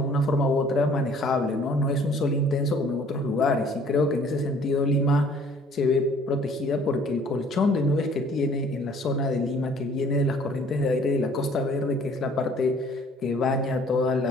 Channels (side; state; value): both; normal; correlation 0.56